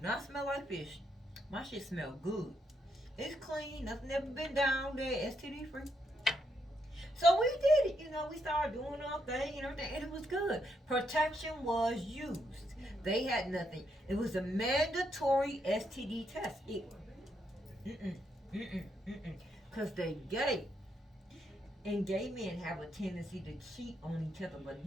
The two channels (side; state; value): both; normal; correlation 0.78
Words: not smell like fish. My shit smell good. It's clean. Nothing ever been down there. STD free. So we did it. We started doing our thing and everything, and it was good. Protection was used. They had nothing. It was a mandatory STD test. Because they gay. And gay men have a tendency to cheat on each other,